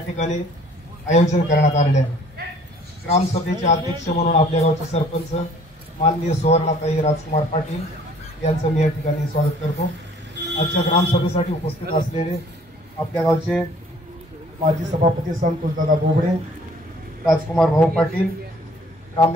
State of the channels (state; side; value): normal; both; correlation 0.55